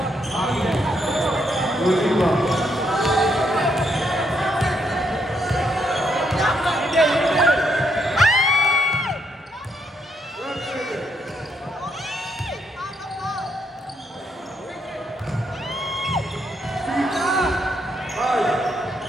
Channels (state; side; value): normal; both; correlation 0.76